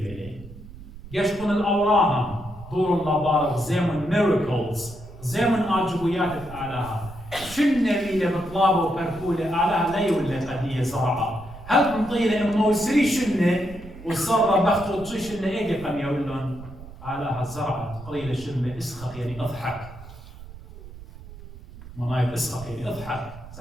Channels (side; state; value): right; noise; rumble, 16 dB below the sound